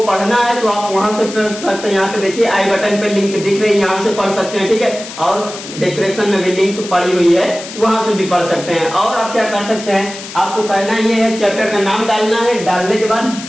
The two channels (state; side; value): noise; left; hiss, 12 dB below the sound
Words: पढ़ना है तो आप वहां से पढ़ सकते हैं। यहाँ पे देखिए आई बटन पे लिंक दिख रही है, यहाँ से पढ़ सकते हैं। ठीक है, और डिस्क्रिप्शन में भी लिंक पड़ी हुई है, वहां से भी पढ़ सकते हैं। और आप क्या कर सकते हैं, आपको करना ये है, चैप्टर का नाम डालना है, डालने के बाद